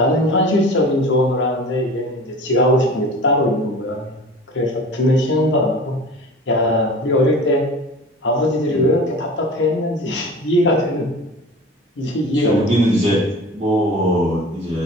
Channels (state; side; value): normal; both; correlation 0.39